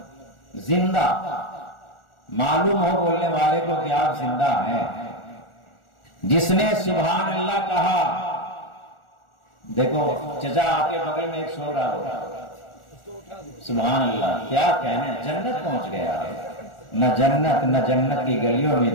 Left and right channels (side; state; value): right; late; 1.4 ms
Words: زندہ، معلوم ہو بولنے والے کو کہ آپ زندہ ہیں۔ جس نے سبحان اللہ کہا، دیکھو چچا آپ کے بغل میں ایک سو رہا ہوگا، سبحان اللہ، کیا کہنے، جنت پہنچ گیا ہے۔ نہ جنت کی گلیوں میں